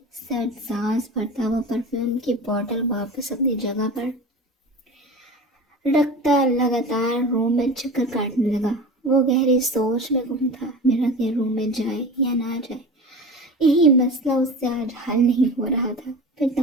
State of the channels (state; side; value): normal; both; correlation 0.33